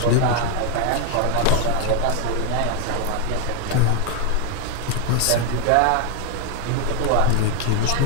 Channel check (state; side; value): different; both; correlation 0.00